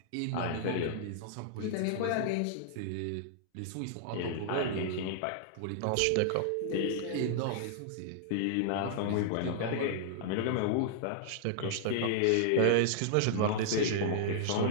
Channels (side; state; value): both; different; correlation -0.01